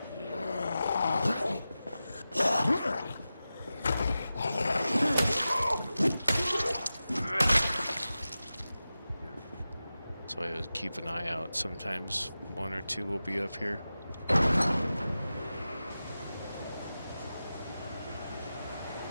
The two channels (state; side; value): inverted; both; correlation -0.94